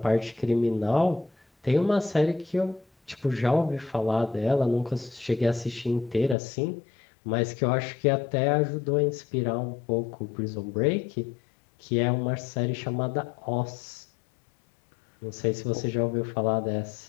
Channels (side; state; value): right; drops out; at 6.4 s